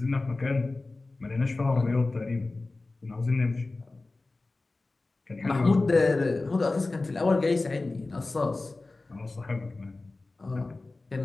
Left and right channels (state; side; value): quieter; right; 3.3 dB